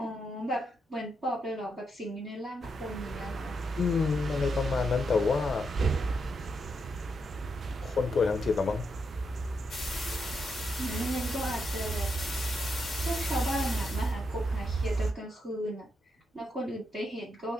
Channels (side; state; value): both; normal; correlation 0.82